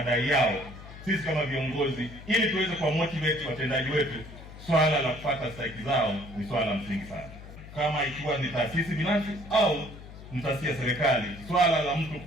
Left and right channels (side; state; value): left; noise; hum, 15 dB below the sound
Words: yao. Sisi kama viongozi, ili tuweze kuwa motivate watendaji wetu, swala la kupata stahiki zao ni swala la msingi sana. Kama ikiwa ni taasisi binafsi au ni taasisi ya serikali, swala la mtu